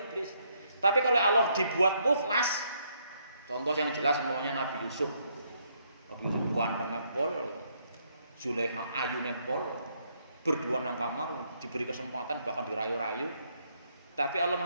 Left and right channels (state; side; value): inverted; both; correlation -0.72